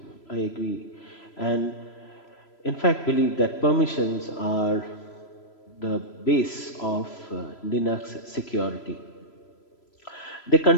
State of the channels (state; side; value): late; right; 3.0 ms